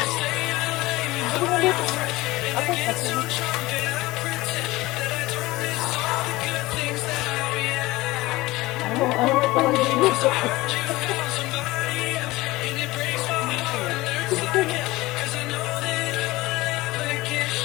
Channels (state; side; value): quieter; right; 19.6 dB